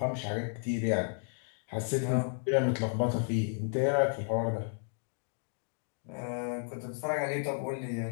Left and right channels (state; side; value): silent; right; 56 dB below the other